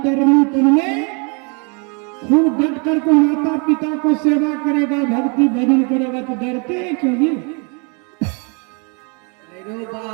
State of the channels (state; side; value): quieter; left; 34.8 dB